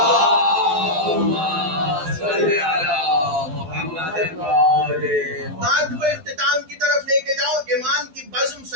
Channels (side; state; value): left; late; 12 ms